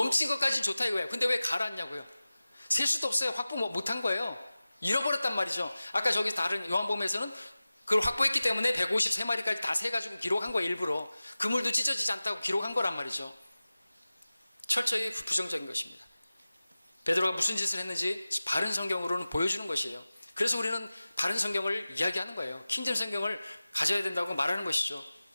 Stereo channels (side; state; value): both; inverted; correlation -0.97